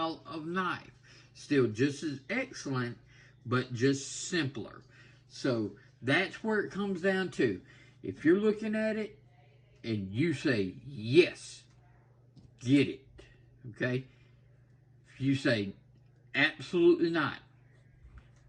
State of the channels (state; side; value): identical; both; correlation 1.00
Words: of knife. Still just as excellent, but just simpler. So that's where it comes down to. If you're looking at it and you say, yes, get it. Okay? If you say, absolutely not,